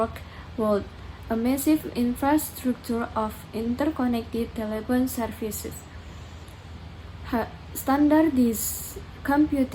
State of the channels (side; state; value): both; identical; correlation 1.00